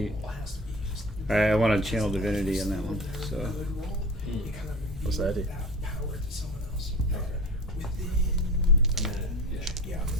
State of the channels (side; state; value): both; normal; correlation 0.36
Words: I want to channel divinity on that one, so... What's that do?